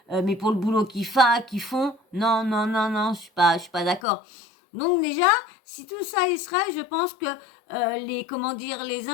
mais pour le boulot qu'ils font, non, non, non, non, je suis pas d'accord. Donc déjà, si tout ça il serait, je pense que les, comment dire, les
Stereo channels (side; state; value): right; drops out; at 4.0 s